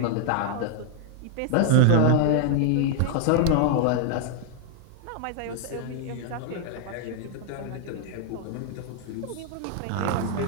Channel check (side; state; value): both; different; correlation 0.00